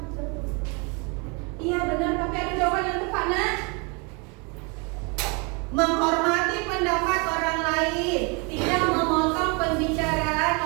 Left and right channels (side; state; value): left; quieter; 31.8 dB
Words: satu. Iya benar, tapi ada jawaban yang tepat nak. Menghormati pendapat orang lain, tidak memotong pembicaraan